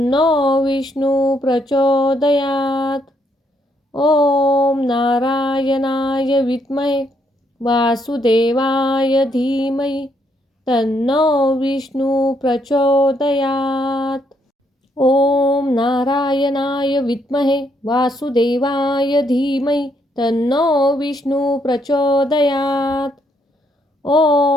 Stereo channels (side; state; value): both; normal; correlation 0.73